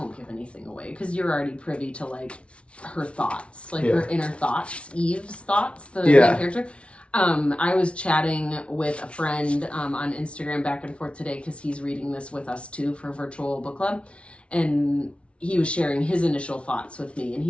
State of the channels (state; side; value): late; right; 0.060 ms